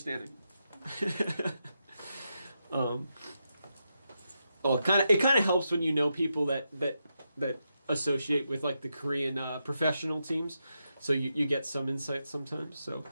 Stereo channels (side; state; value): both; inverted; correlation -0.85